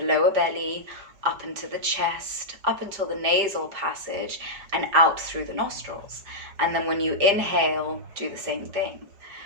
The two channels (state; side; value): late; left; 5.0 ms